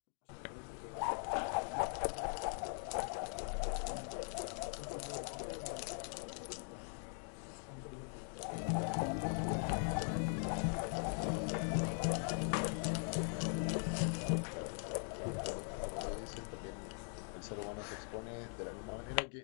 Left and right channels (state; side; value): silent; right; 50 dB below the other